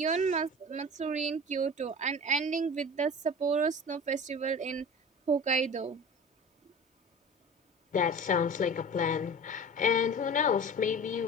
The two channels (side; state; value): both; normal; correlation 0.36